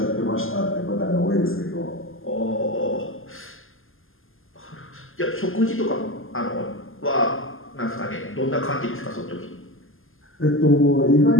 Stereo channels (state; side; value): late; right; 0.59 ms